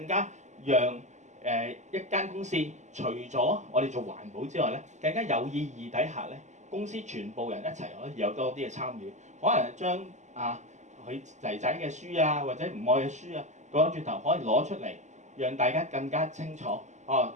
加讓一間公司除咗我哋做環保之外咧，更加有意義底下咧，公司全部人一齊可以有多啲嘅參與，可能將佢仔仔嘅書啊，或者唔愛嘅書啊，講轉頭可以攞出嚟，讓大家更加清楚。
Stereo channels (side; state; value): left; late; 0.34 ms